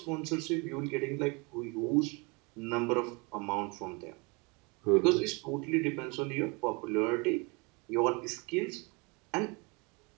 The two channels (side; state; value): left; quieter; 28.8 dB